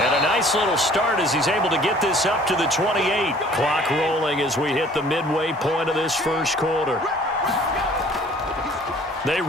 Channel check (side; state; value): both; normal; correlation 0.53